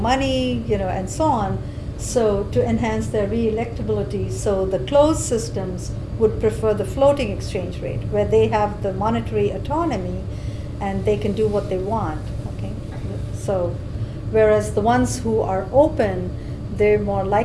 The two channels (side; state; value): both; identical; correlation 1.00